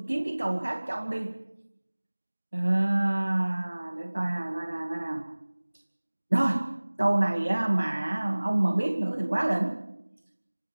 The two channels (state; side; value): inverted; both; correlation -1.00